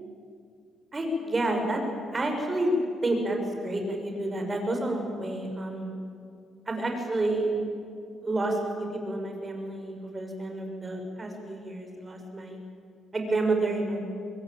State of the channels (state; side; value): normal; both; correlation 0.83